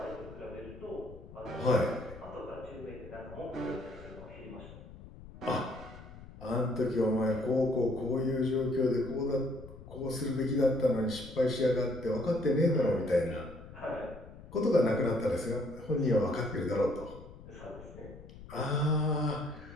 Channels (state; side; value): noise; left; rumble, 17 dB below the sound